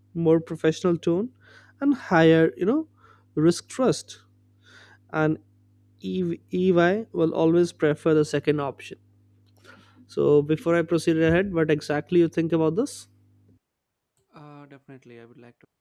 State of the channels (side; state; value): both; identical; correlation 1.00